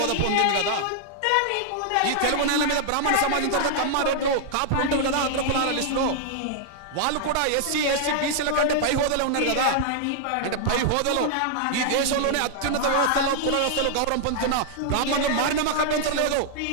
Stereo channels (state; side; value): different; both; correlation -0.01